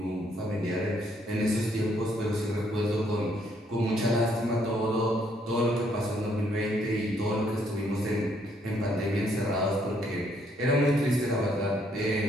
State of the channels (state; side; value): normal; both; correlation 0.70